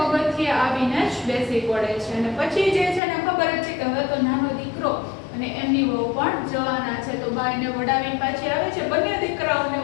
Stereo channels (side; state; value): right; drops out; at 3.0 s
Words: આવીને જ બેસી પડે છે. અને પછી જે છે ને ખબર જ છે કે હવે તો નાનો દીકરો અને એમની વહુ પણ જવાના છે, તો બા એને વડાવીને પાછી આવે છે, બંને દીકરાઓને